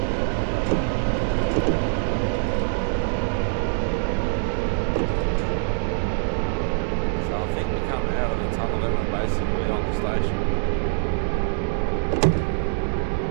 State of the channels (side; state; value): left; silent; digital silence